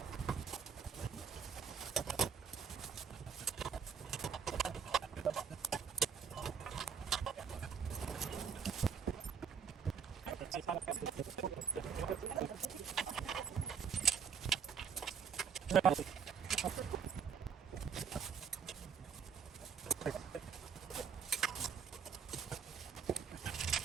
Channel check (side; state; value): left; quieter; 6.8 dB